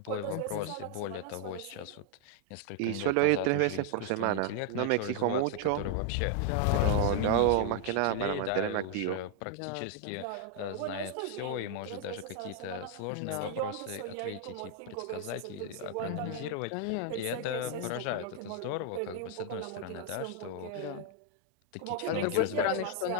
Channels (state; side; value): different; both; correlation 0.00